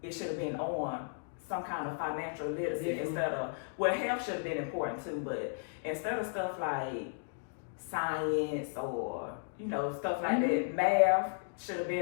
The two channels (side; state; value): right; silent; digital silence